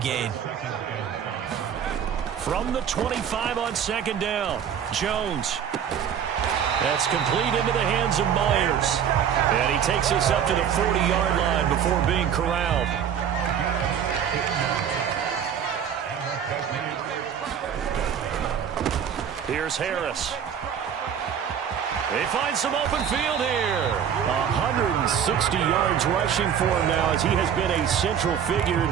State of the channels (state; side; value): quieter; left; 8.4 dB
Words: From the 25 on second down, Jones. That's complete into the hands of Myers. And he takes us up to the 40-yard line before being corralled. Here's Harris. They find some open field here. 160 yards rushing for him now as he has been a central figure in